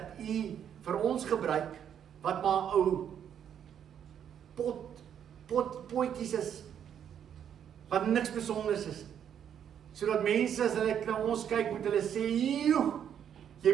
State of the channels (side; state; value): left; quieter; 9.0 dB